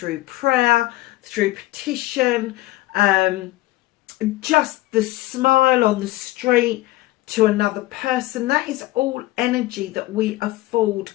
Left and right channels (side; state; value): right; quieter; 18.0 dB